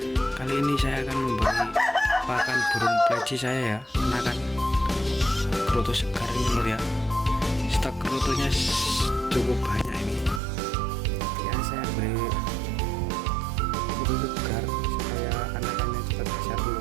Kali ini saya akan memberi pakan burung pleci saya ya, anakan kroto segar ini lur ya. Stok krotonya cukup banyak ini. Ya saya beri kroto segar supaya anakannya cepat besar dulu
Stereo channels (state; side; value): drops out; left; at 10.4 s